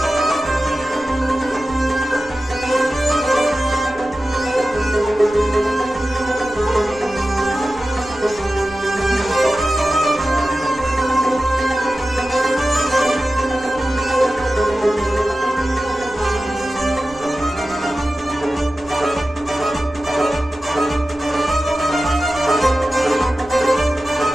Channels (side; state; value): right; noise; rumble, 22 dB below the sound